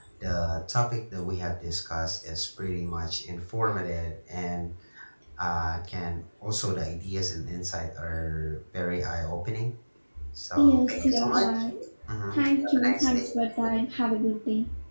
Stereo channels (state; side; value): inverted; both; correlation -1.00